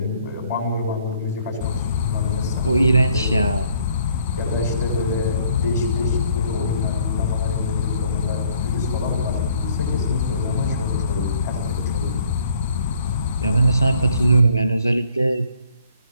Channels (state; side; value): inverted; both; correlation -0.63